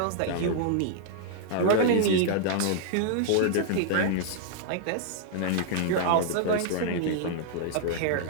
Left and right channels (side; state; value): both; different; correlation -0.01